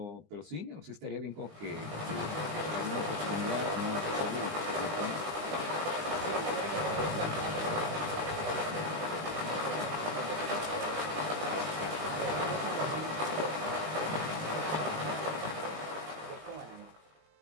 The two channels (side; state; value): left; late; 20 ms